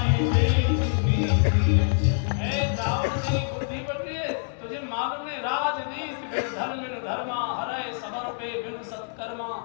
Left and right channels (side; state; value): right; silent; 61 dB below the other